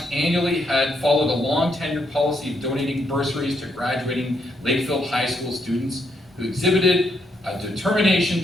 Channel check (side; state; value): both; normal; correlation 0.76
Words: annually had followed a long tenured policy of donating bursaries to graduating Lakefield High School students who exhibited a determination